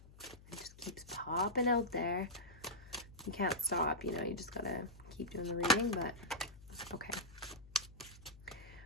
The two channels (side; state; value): left; noise; hum, 20 dB below the sound